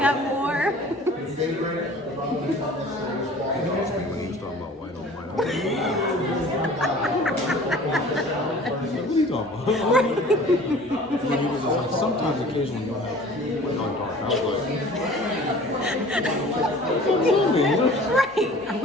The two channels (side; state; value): both; normal; correlation 0.46